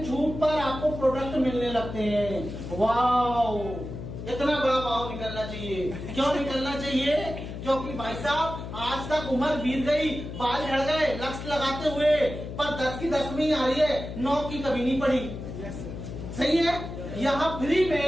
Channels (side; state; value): left; noise; hum, 8 dB below the sound